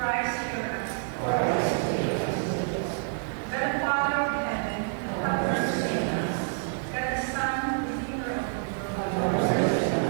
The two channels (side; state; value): left; silent; digital silence